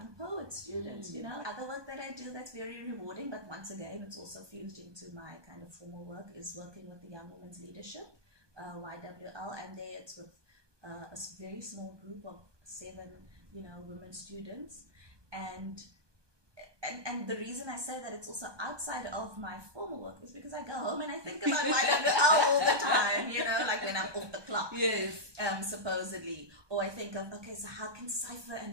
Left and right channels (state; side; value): late; left; 1.2 ms